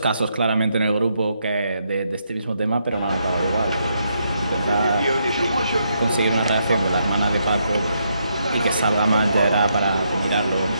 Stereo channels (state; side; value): inverted; both; correlation -0.78